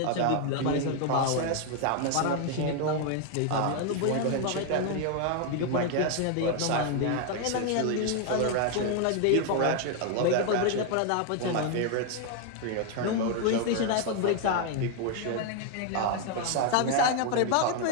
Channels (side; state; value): both; different; correlation 0.01